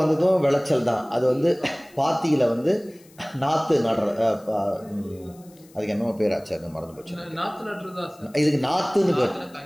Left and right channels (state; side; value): noise; left; hiss, 27 dB below the sound